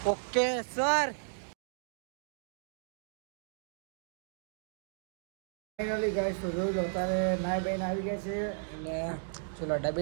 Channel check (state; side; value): silent; left; digital silence